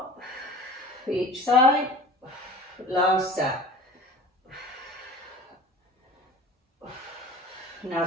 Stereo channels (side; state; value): both; normal; correlation 0.40